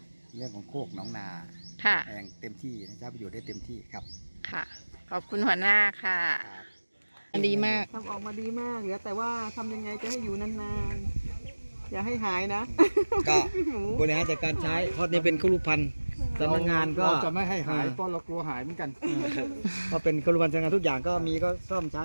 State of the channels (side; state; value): both; inverted; correlation -1.00